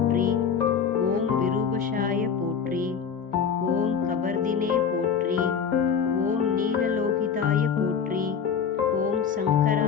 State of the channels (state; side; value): quieter; right; 6.8 dB